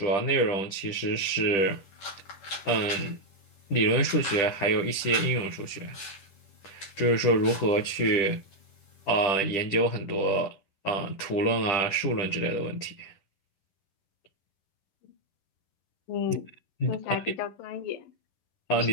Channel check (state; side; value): late; right; 10 ms